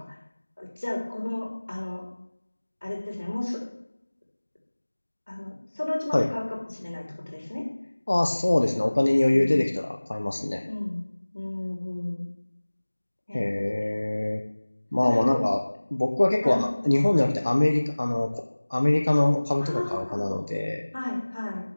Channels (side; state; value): both; inverted; correlation -1.00